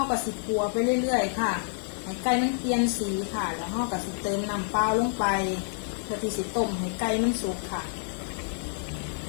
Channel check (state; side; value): silent; right; 59 dB below the other